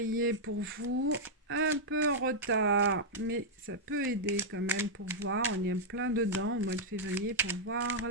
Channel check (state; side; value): normal; both; correlation -0.05